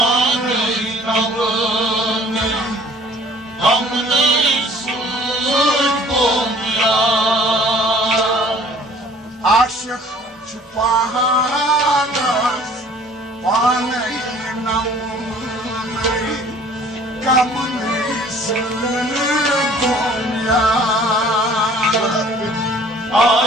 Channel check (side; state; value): both; normal; correlation 0.53